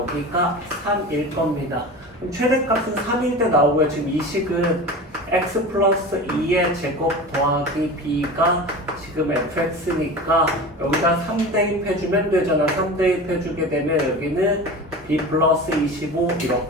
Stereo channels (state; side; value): normal; both; correlation 0.32